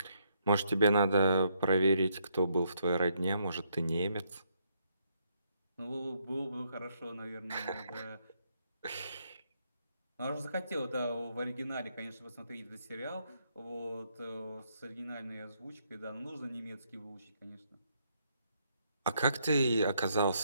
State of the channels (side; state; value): both; inverted; correlation -0.75